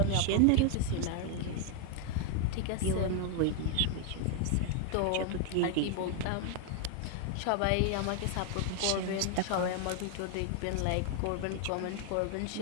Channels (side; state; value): both; different; correlation 0.00